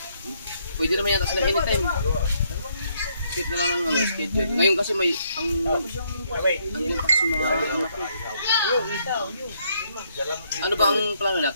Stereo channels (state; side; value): inverted; both; correlation -0.72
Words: Pwede naman yata sila anytime. Set na lang ang ano, schedule. Ngayon kasi may ang taxi mga anak ko. Ano ba ang plano